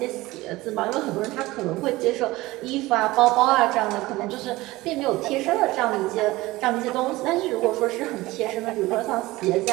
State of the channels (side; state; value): left; quieter; 19.3 dB